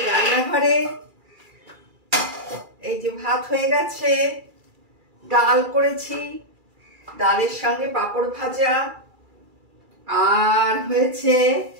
রান্নাঘরে এই যে ভাত হয়ে গেছে, ডাল করেছি, ডালের সঙ্গে পাঁপড় ভাজা, আর হয়েছে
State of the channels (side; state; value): left; late; 2.3 ms